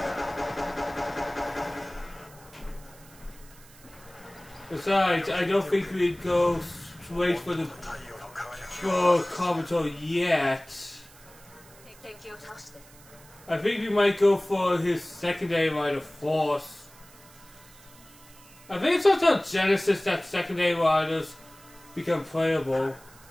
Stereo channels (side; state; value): right; noise; hiss, 23 dB below the sound